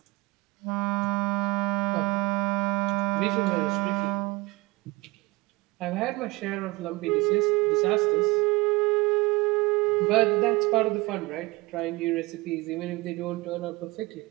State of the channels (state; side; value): quieter; left; 23.5 dB